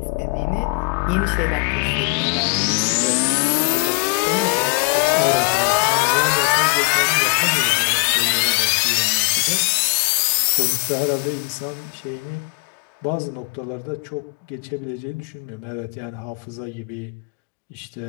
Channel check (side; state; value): right; quieter; 34.5 dB